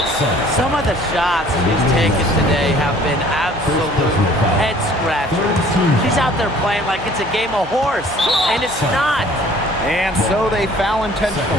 Some of the shots she's taken today have been absolute head scratchers. She's out there playing like it's a game of horse, and it's not. And so they foul intentionally.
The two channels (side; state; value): right; noise; hum, 17 dB below the sound